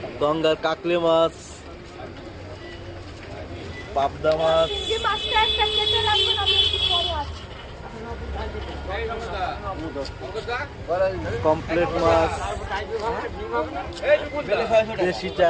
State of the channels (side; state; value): both; identical; correlation 1.00